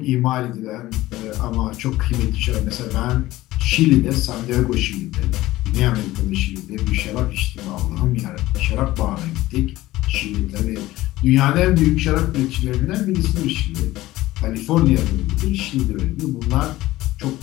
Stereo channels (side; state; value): right; quieter; 16.9 dB